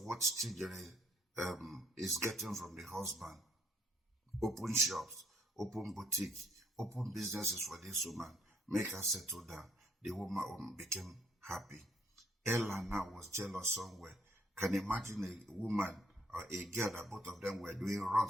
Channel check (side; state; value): both; normal; correlation 0.67